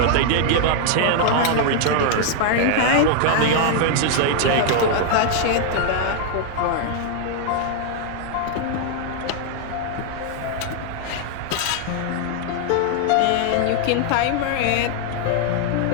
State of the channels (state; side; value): different; both; correlation 0.00